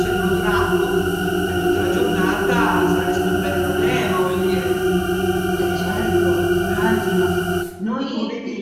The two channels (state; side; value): identical; both; correlation 1.00